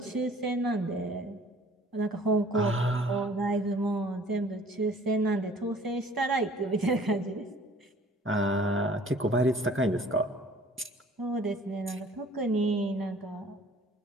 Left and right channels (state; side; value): normal; both; correlation 0.53